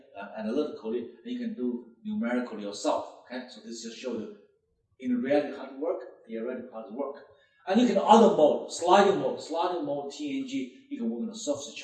analytically, and you can do numerically yourself. Okay? So this just shows you in reality how to work, theoretically how to work. And you can other mode, sliding mode, TNG. You can work on the surface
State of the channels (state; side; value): identical; both; correlation 1.00